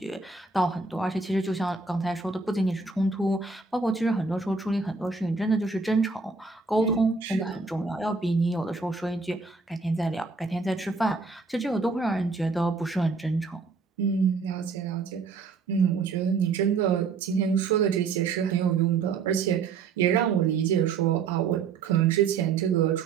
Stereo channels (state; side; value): quieter; left; 4.7 dB